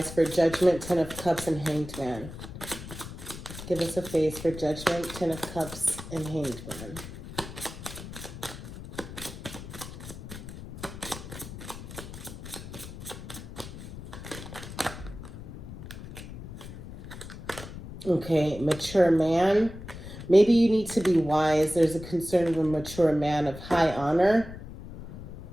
for Judgment, 10 of Cups, and Hanged Man. Give us a face for Judgment, 10 of Cups, and Hanged Man. Okay, mature man. Maybe you need to be wise. There's a concern of a mature man of high honor.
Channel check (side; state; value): left; noise; rumble, 12 dB below the sound